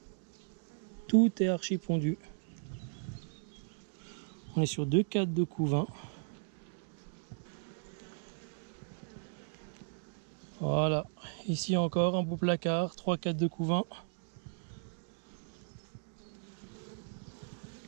Tout est archi pondu. On est sur 2 cadres de couvain. Voilà, ici encore un beau placard, 3 cadres de couvain.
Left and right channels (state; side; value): silent; left; digital silence